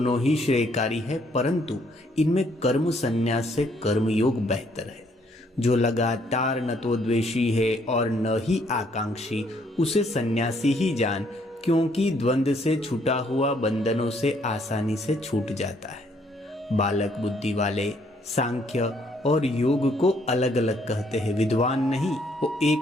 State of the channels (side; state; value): both; normal; correlation 0.68